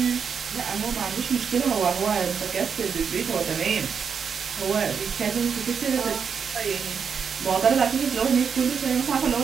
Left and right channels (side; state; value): left; quieter; 6.6 dB